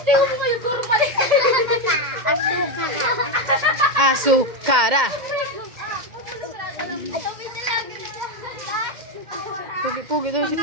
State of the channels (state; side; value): late; left; 2.1 ms